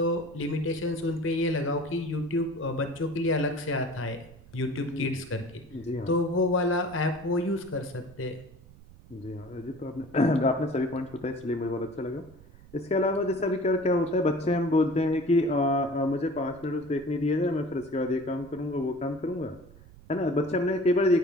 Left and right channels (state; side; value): noise; right; rumble, 22 dB below the sound